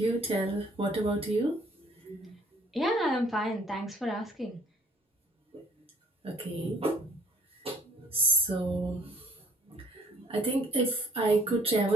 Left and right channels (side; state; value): both; normal; correlation 0.59